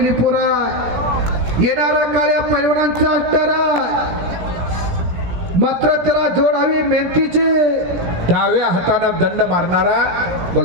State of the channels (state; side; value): late; left; 17 ms